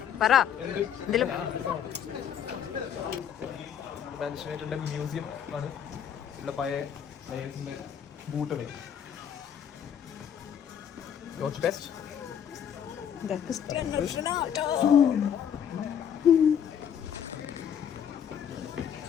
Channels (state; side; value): quieter; right; 8.7 dB